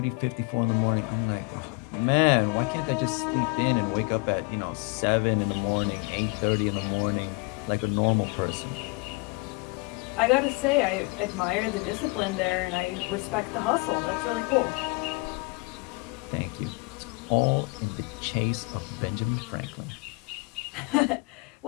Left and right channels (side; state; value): right; quieter; 28.9 dB